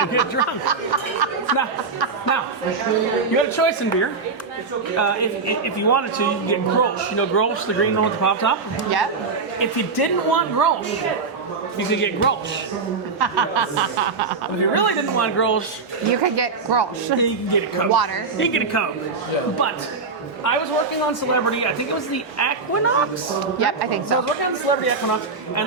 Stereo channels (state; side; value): quieter; left; 4.5 dB